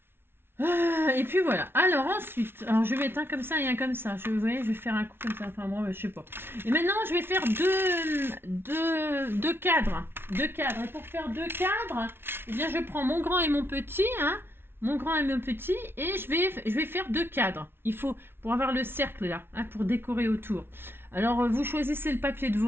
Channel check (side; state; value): left; late; 0.11 ms